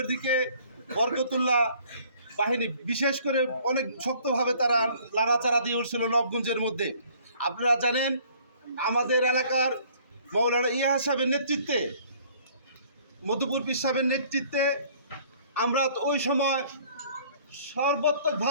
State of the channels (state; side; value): inverted; both; correlation -0.56